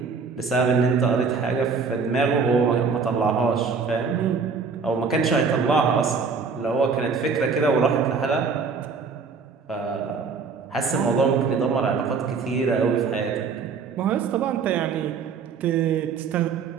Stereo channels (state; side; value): quieter; left; 5.2 dB